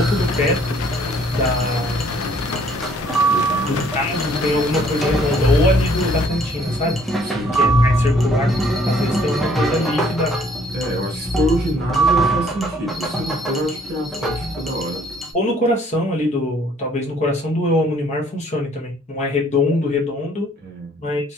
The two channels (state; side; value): normal; both; correlation 0.61